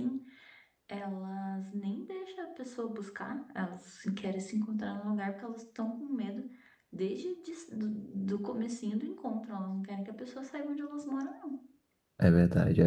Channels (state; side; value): identical; both; correlation 1.00